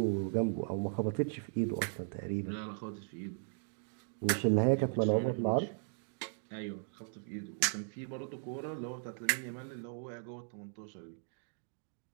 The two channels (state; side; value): silent; left; digital silence